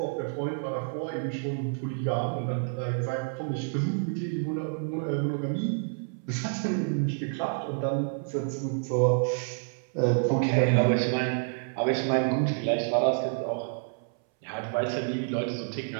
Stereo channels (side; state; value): left; silent; 59 dB below the other